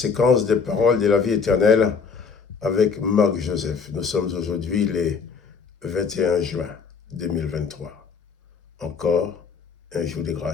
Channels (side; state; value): right; quieter; 5.6 dB